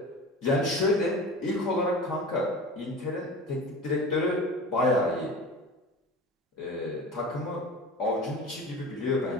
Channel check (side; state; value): both; normal; correlation 0.34